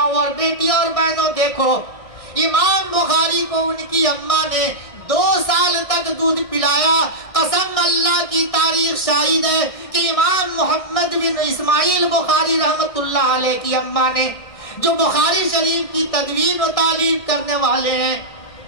اور بیٹی اور بہنوں دیکھو, امام بخاری کو ان کی اماں نے 2 سال تک دودھ پلایا. قسم اللہ کی تاریخ شاہد ہے کہ امام محمد بن اسماعیل بخاری رحمت اللہ علیہ کی اماں نے, جو بخاری شریف کی تدوین و تعلیف کرنے والے ہیں,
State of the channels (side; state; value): right; late; 1.6 ms